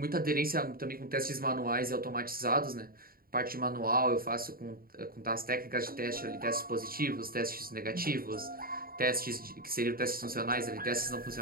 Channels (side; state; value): left; late; 0.43 ms